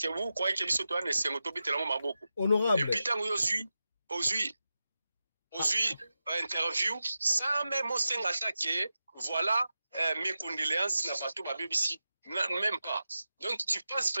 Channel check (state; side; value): inverted; both; correlation -0.92